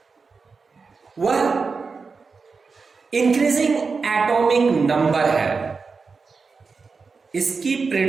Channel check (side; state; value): left; quieter; 4.7 dB